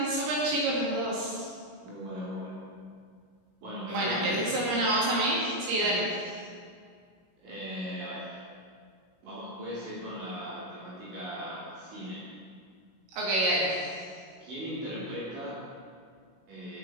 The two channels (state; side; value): late; left; 16 ms